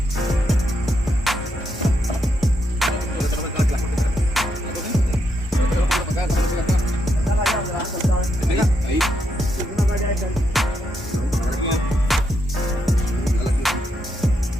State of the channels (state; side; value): normal; both; correlation 0.80